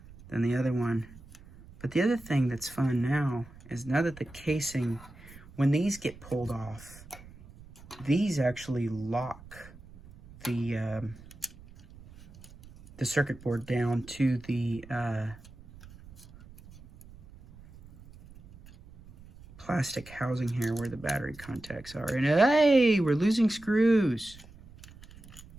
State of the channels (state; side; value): noise; right; rumble, 20 dB below the sound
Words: than the other one. But the other thing that's fun now is now that the casing, when these get pulled off, these actually lock the circuit board down to the plastic housing here where the battery contacts are. And hey, we're losing screws.